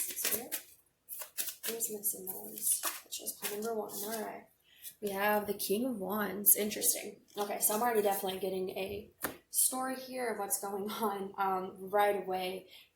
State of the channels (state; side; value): identical; both; correlation 1.00